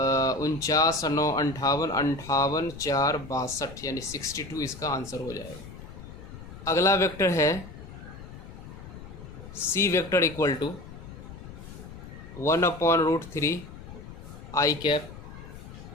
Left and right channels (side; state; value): left; noise; rumble, 14 dB below the sound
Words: 49 9 58 58 4 62, यानी 62 इसका आंसर हो जाएगा। अगला वेक्टर है C vector equal to 1/√3 i cap